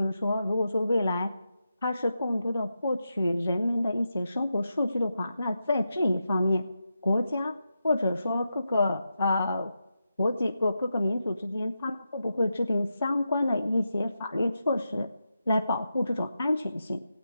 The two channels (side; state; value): both; inverted; correlation -0.88